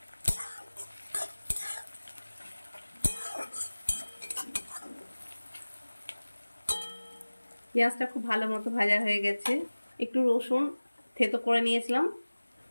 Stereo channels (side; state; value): both; inverted; correlation -1.00